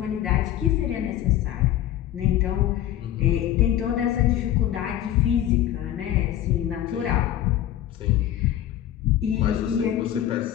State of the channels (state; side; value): quieter; right; 12.1 dB